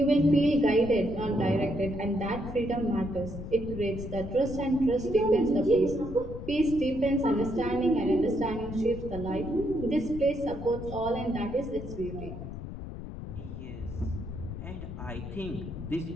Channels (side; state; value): left; noise; rumble, 9 dB below the sound